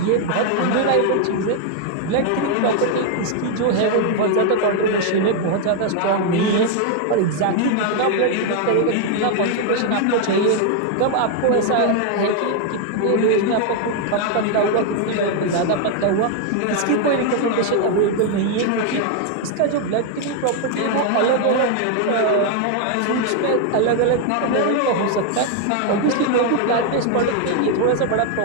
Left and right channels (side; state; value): both; different; correlation 0.00